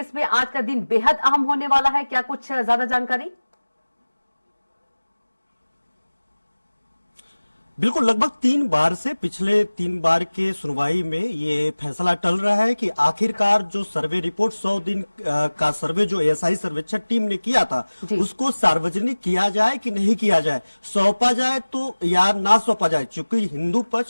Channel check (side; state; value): both; inverted; correlation -1.00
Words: में आज का दिन बेहद अहम होने वाला है, क्या कुछ ज्यादा जानकारी? बिल्कुल, लगभग 3 बार से पिछले 3 बार के सुनवाई में ये फैसला टल रहा है कि आखिरकार जो सर्वे रिपोर्ट 100 दिन का सर्वे जो एएसआई सर्वेक्षण टीम ने किया था उसको सार्वजनिक किया जाए कि नहीं किया जाए, सौंपा जाए तो या ना सौंपा जाए। चूंकि हिंदू